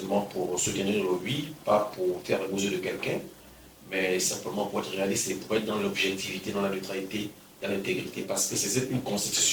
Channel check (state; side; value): identical; both; correlation 1.00